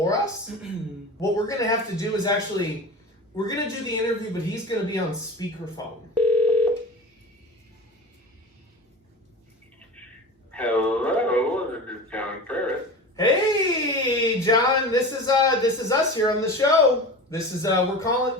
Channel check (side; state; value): both; normal; correlation 0.32